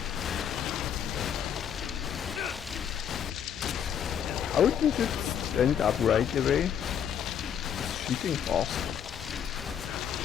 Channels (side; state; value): right; quieter; 8.6 dB